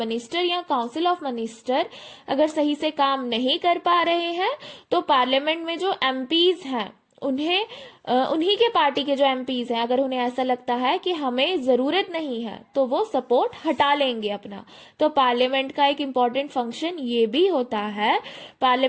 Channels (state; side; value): identical; both; correlation 1.00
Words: या काउंसिल ऑफ मिनिस्टर अगर सही से काम नहीं कर पा रहे हैं, तो पार्लियामेंट में जो एमपीज हैं उन्हें उन्हीं के पार्टी के जो एमपीज हैं, अगर उन्हें ऐसा लगता है कि हमें जरूरत नहीं है, तो वो सपोर्ट हटा लेंगे अपना. तो पार्लियामेंट का एक इम्पॉर्टेंट फंक्शन ये भी होता है.